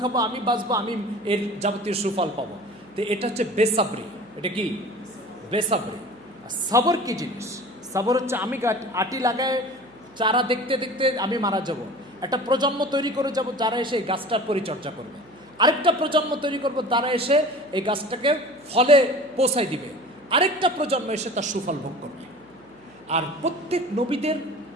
খাবো, আমি বাঁচবো, আমি এর যাবতীয় সুফল পাবো। তো এটা হচ্ছে বেসাবরি। এটা কি বেসাবরি। সবর কি জিনিস? সবর হচ্ছে আমি আটি লাগায় চারা দেখতে দেখতে আমি মারা যাব, একটা প্রজন্ম তৈরি করে যাব যারা এসে এই গাছটার পরিচর্যা করবে, আরেকটা প্রজন্ম তৈরি করবো তারা এসে এই গাছটাকে ফলে পৌঁছায় দিবে, আরেকটা প্রজন্ম এসে তার সুফল ভোগ করবে। আর প্রত্যেক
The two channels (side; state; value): right; noise; hum, 29 dB below the sound